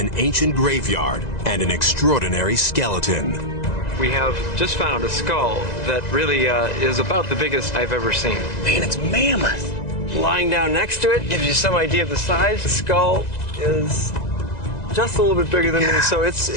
ancient graveyard and an extraordinary skeleton. We have just found a skull that really is about the biggest I've ever seen. Man, it's mammoth. Lying down next to it gives you some idea of the size. The skull is just a little bit bigger than me, so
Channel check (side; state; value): right; late; 2.0 ms